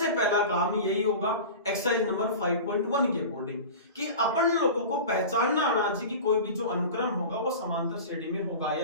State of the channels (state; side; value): inverted; both; correlation -0.33